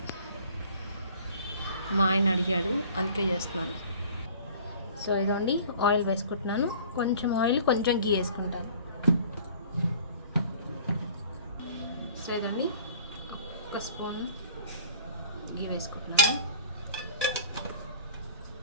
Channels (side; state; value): both; inverted; correlation -0.49